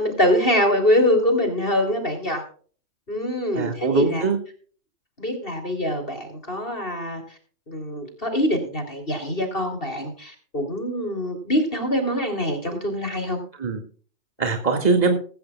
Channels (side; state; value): right; late; 2.7 ms